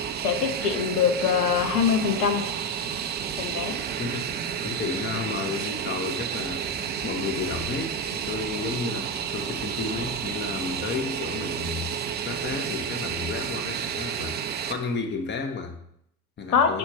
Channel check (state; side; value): normal; both; correlation 0.10